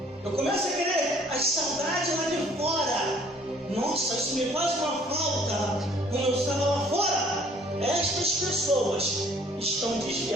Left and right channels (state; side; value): normal; both; correlation 0.58